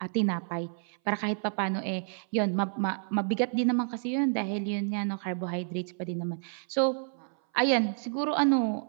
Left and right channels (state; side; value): silent; left; 58 dB below the other